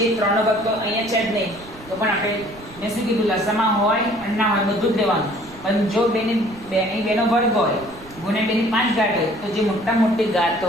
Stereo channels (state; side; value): noise; right; rumble, 21 dB below the sound